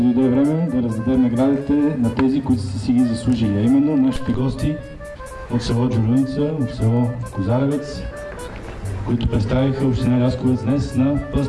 време да раздадем наградите на тези, които са си ги заслужили, а именно нашите гости от село Джурулица, от село Козаревец, които представиха община Лясковец днес на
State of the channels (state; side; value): identical; both; correlation 1.00